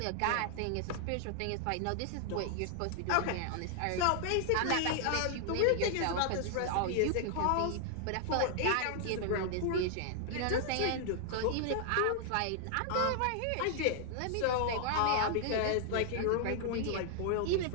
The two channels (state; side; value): different; both; correlation -0.01